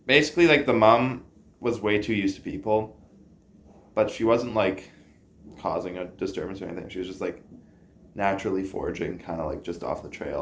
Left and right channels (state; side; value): identical; both; correlation 1.00